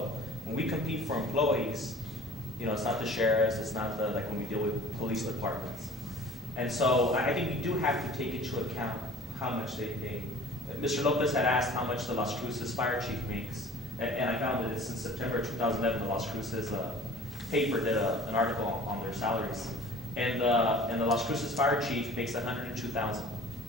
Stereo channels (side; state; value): both; normal; correlation 0.46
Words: when we compete for employees, you know, it's not the sheriffs, it's not the, like when we deal with police departments. And so I think we do have to take into account how much they pay. Mr. Lopez had asked how much the Las Cruces fire chief makes, and I found that it's in September 2011, the Las Cruces paper did an article on their salaries. And the Las Cruces fire chief makes $102,000.